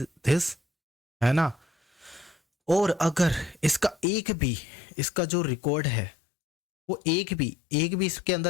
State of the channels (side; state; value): right; drops out; at 4.0 s